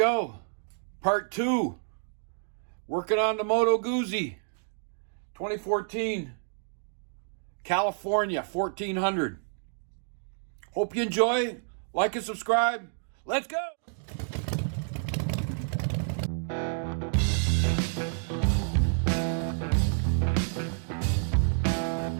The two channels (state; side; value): silent; left; digital silence